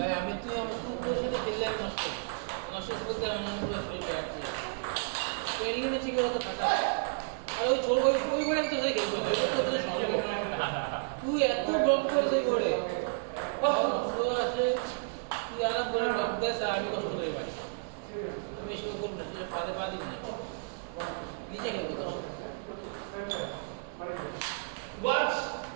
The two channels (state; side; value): silent; left; 56 dB below the other